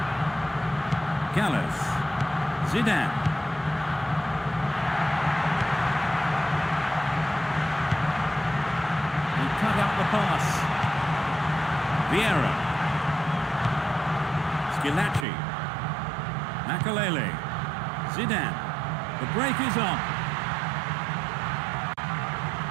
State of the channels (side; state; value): left; drops out; at 15.2 s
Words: Gallas. Zidane. He cut out the pass. Vieira. Skilacci. Makalele. Zidane. The break is on.